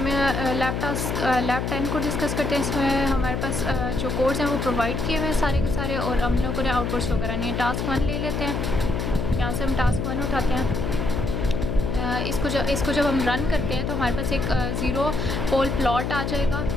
lab 10 को discuss करते हैं। इसमें हमारे पास जो कोड्स हैं वो प्रोवाइड किए हुए हैं सारे के सारे, और हम लोगों ने आउटपुट शो करानी है। टास्क 1 ले लेते हैं, यहाँ से हम टास्क 1 उठाते हैं। इसको जब हम रन करते हैं तो हमारे पास एक 0 पोल प्लॉट आ जाएगा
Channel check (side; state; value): left; noise; hum, 2 dB below the sound